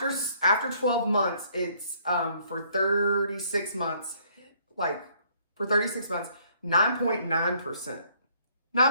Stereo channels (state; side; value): inverted; both; correlation -0.64